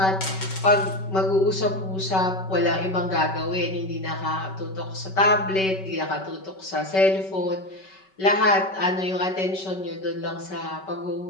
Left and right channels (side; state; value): right; late; 5.3 ms